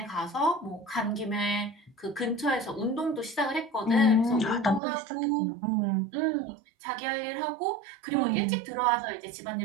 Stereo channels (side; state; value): left; drops out; at 4.8 s